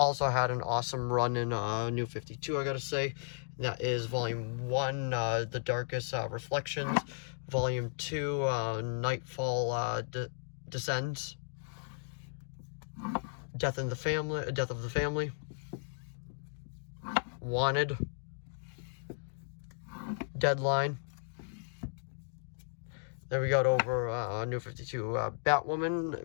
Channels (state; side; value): silent; right; digital silence